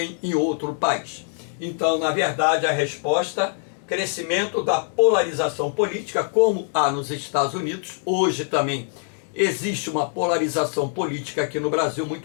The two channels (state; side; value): silent; right; digital silence